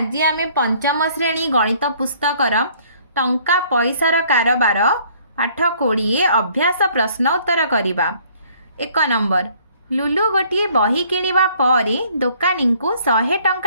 आमे पंचम श्रेणी गणित पुस्तकर टंका पैसार कारबार पाठ 20 अभ्यास प्रश्न उत्तर करवा। 1 नंबर लुलु गोटे बही किणवा परे दोकानी को 100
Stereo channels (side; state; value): both; inverted; correlation -0.60